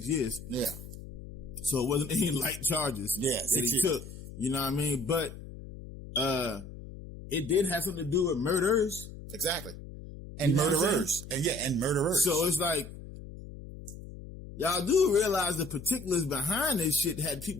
years. Yeah. So it wasn't any light charges that he took. You know what I mean? But it did have something to do with murders. Exactly. And murderers. And murderers. So it's like, y'all do realize the particulars behind this shit had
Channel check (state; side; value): noise; left; hum, 13 dB below the sound